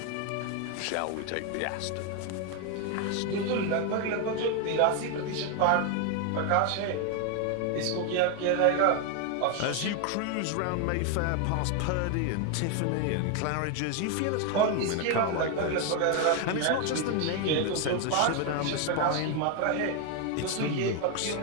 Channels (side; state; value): both; different; correlation 0.01